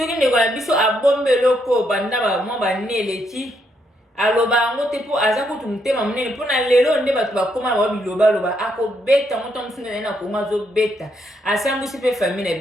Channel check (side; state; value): both; normal; correlation 0.76